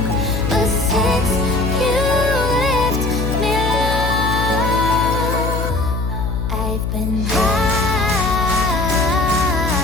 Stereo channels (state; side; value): noise; left; hum, 2 dB below the sound